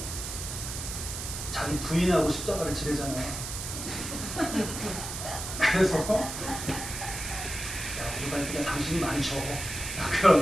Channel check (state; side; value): noise; right; hiss, 6 dB below the sound